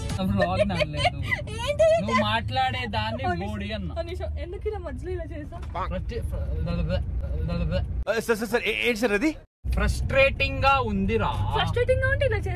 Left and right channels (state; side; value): identical; both; correlation 1.00